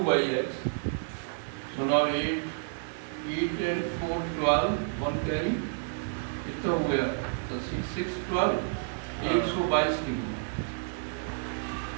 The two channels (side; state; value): left; silent; digital silence